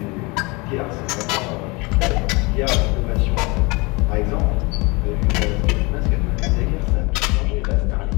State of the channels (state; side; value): quieter; right; 26.4 dB